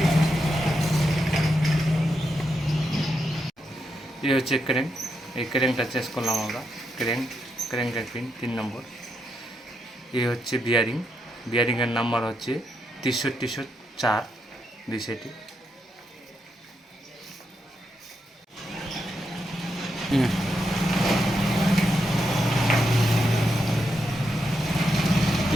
এই হচ্ছে ক্র্যাঙ্ক, এই ক্র্যাঙ্কটা চেঞ্জ করলাম আমরা, ক্র্যাঙ্কের পিন 3 নম্বর। এই হচ্ছে বিয়ারিংয়ের নাম্বার হচ্ছে 6304 বিষয়টি।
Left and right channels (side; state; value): both; normal; correlation 0.83